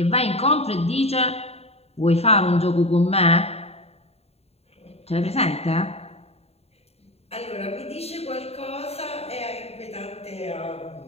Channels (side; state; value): right; late; 0.30 ms